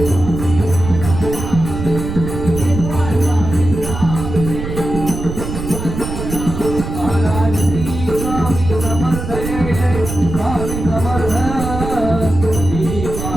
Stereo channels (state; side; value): noise; right; rumble, 6 dB below the sound